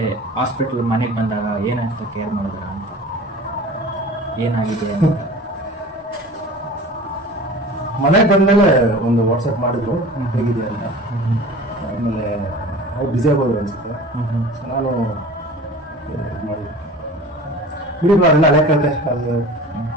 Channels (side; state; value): both; normal; correlation 0.40